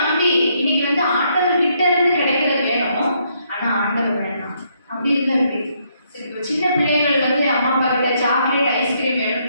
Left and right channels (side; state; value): both; inverted; correlation -0.73